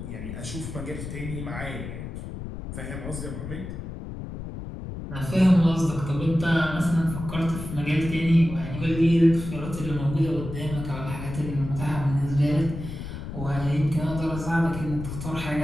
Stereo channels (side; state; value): left; noise; rumble, 8 dB below the sound